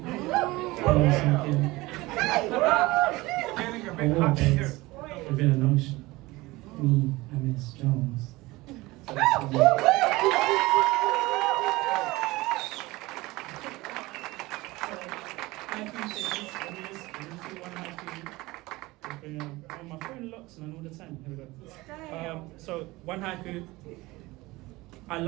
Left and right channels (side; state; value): left; quieter; 20.7 dB